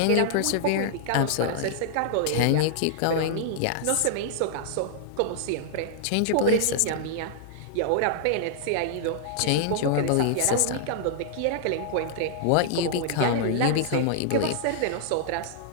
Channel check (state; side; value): different; both; correlation -0.01